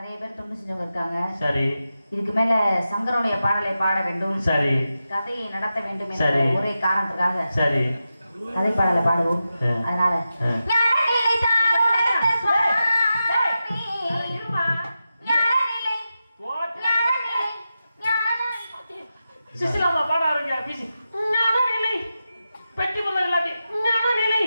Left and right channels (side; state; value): both; inverted; correlation -0.91